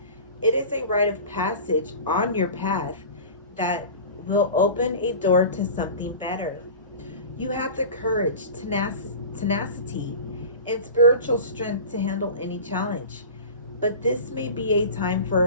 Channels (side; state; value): both; inverted; correlation -0.36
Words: It is a rite of passage on your path that will open a door to something better. You have the courage, tenacity, and spiritual strength to handle any challenge. But this may be a time